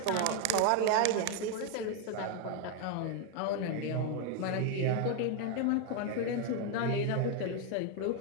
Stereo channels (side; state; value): both; different; correlation 0.01